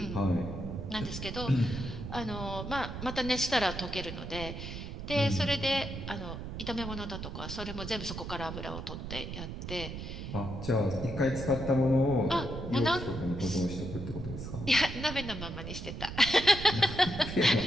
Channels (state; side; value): noise; right; rumble, 7 dB below the sound